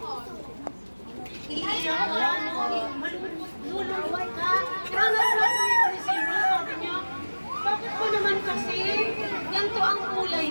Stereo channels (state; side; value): inverted; both; correlation -1.00